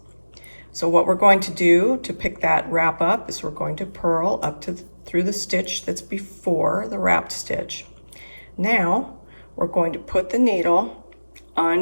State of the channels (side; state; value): both; inverted; correlation -1.00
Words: So what we're going to do to pick that wrap up is we're going to purl up to through the stitch that's before the wrapped stitch. Now we're going to put the needle